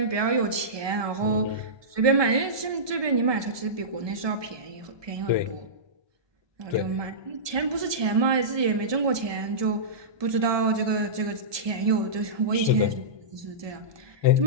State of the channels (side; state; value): left; late; 1.2 ms